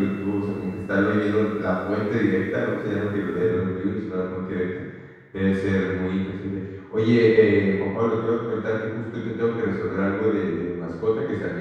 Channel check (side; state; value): both; identical; correlation 1.00